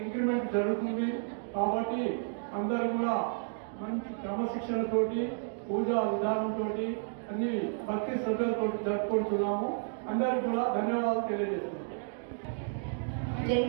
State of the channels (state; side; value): silent; left; digital silence